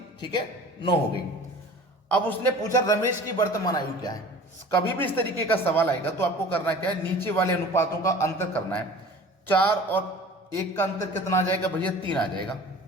ठीक है, 9 हो गई। अब उसने पूछा रमेश की वर्तमान आयु क्या है। कभी भी इस तरीके का सवाल आएगा तो आपको करना क्या है? नीचे वाले अनुपातों का अंतर करना है। 4 और 1 का अंतर कितना आ जाएगा भैया? 3 आ जाएगा।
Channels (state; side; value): normal; both; correlation 0.42